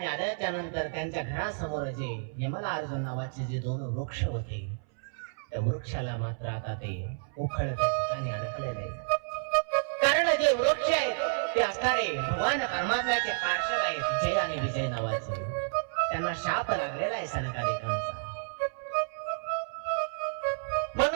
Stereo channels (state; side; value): silent; left; 58 dB below the other